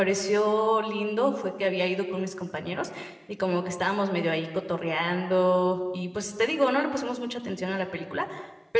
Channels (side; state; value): both; identical; correlation 1.00